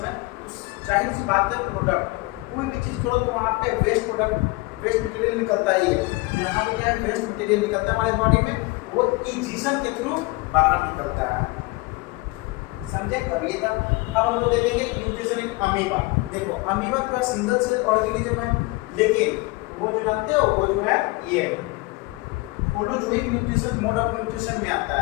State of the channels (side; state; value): right; quieter; 23.3 dB